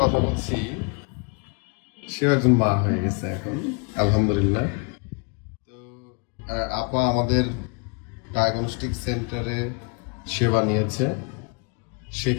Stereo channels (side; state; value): right; quieter; 34.6 dB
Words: কথা বলছি, সেও একজন মা হয়ে গেছে এখন, আলহামদুলিল্লাহ। তো আপা আমাদের ডায়াগনস্টিক সেন্টারে সেবা নিয়েছে,